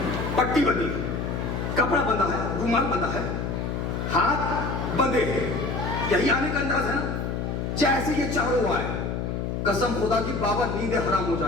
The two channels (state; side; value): noise; left; hum, 2 dB below the sound